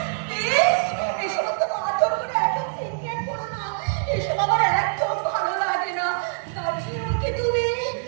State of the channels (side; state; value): left; silent; digital silence